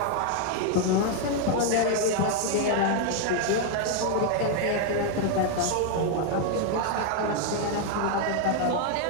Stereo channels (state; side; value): different; both; correlation 0.00